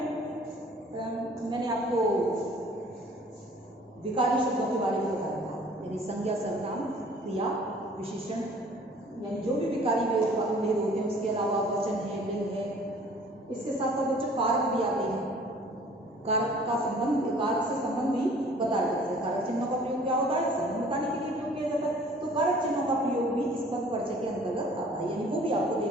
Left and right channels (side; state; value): both; normal; correlation 0.52